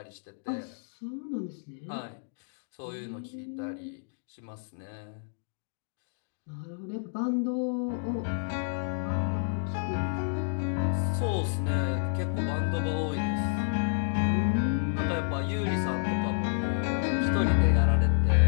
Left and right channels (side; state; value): right; silent; digital silence